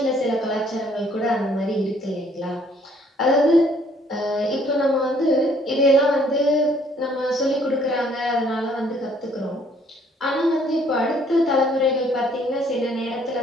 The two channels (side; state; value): both; normal; correlation 0.63